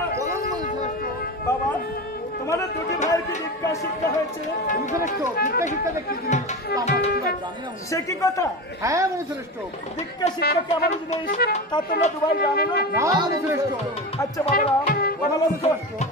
সে কি কথা? হ্যাঁ মনুশ্রেষ্ঠ, দীক্ষা শিক্ষা কেমন জিনিস তা তোমরা দুভাই জানো না? মনুশ্রেষ্ঠ। আচ্ছা বাবারাম,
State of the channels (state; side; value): normal; both; correlation 0.24